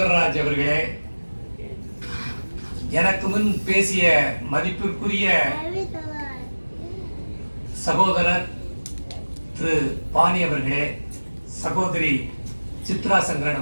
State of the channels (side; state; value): both; inverted; correlation -1.00